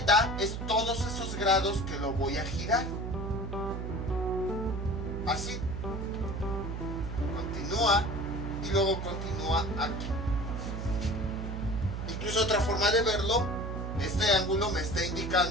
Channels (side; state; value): right; noise; hum, 4 dB below the sound